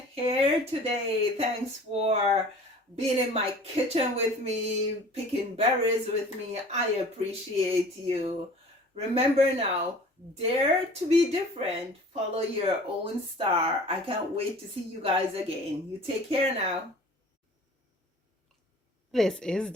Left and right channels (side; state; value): both; normal; correlation 0.46